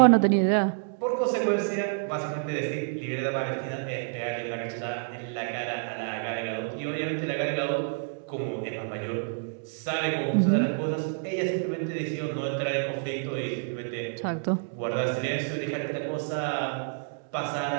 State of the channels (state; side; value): silent; left; digital silence